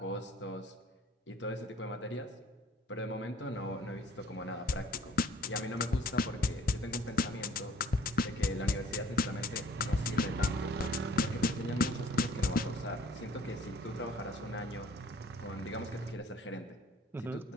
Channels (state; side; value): normal; both; correlation 0.56